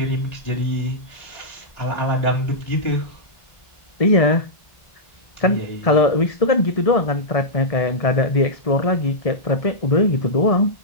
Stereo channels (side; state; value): right; late; 1.7 ms